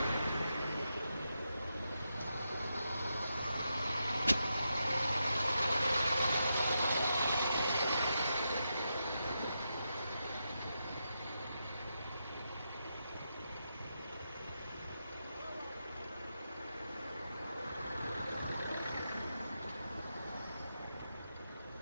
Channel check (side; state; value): both; inverted; correlation -0.86